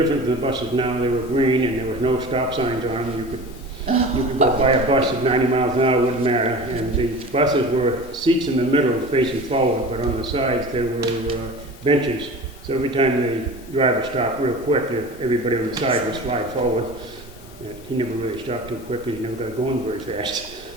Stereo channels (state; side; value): normal; both; correlation 0.36